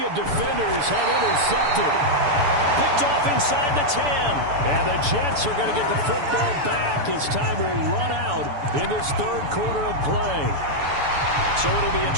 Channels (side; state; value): left; late; 6.9 ms